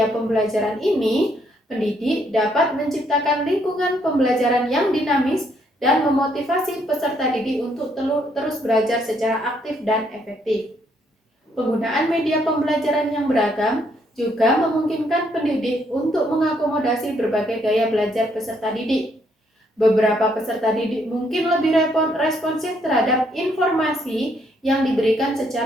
pembelajaran ini, pendidik dapat menciptakan lingkungan pembelajaran yang dinamis dan memotivasi peserta didik untuk terus belajar secara aktif dan efektif. Penggunaan media pembelajaran yang beragam juga memungkinkan pendidik untuk mengakomodasi berbagai gaya belajar peserta didik. Beberapa peserta didik mungkin lebih responsif terhadap informasi yang diberikan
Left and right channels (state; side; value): normal; both; correlation 0.71